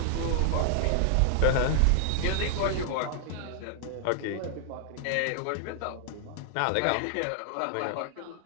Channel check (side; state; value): both; different; correlation -0.01